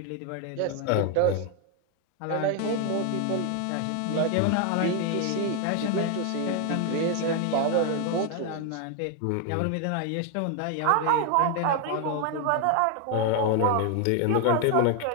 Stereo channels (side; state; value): both; different; correlation 0.01